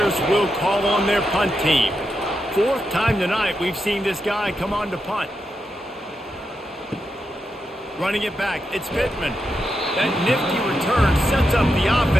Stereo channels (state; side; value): normal; both; correlation 0.85